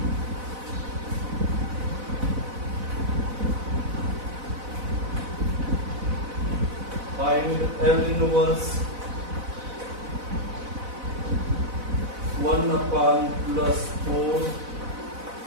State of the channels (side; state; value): left; late; 4.0 ms